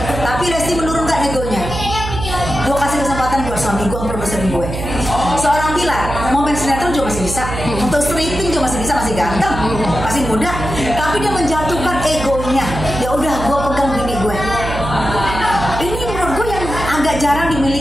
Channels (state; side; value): noise; right; hum, 6 dB below the sound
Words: Tapi Lesti menurunkan egonya. Gue kasih kesempatan buat suami gue, produserin gue. Seorang Bilar mau main sinetron juga masih bisa, untuk stripping juga masih bisa, masih ganteng, masih muda. Tapi dia menjatuhkan egonya. Ya udah, gue pegang bini gue. Ini menurut gue yang agak jarang